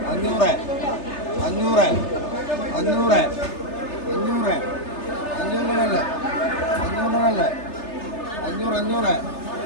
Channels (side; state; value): right; late; 3.3 ms